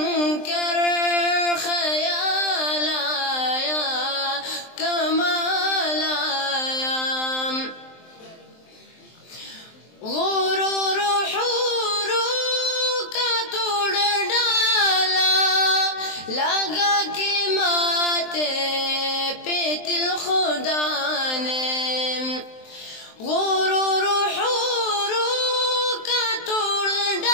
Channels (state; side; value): late; right; 23 ms